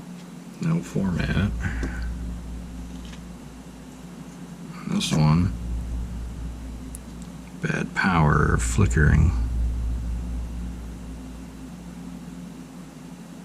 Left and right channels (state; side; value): identical; both; correlation 1.00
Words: No format. This one, bad power, flickering.